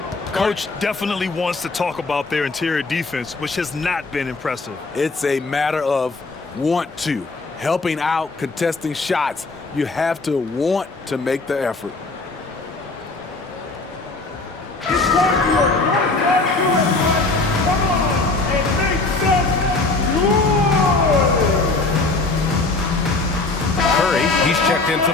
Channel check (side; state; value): right; quieter; 3.5 dB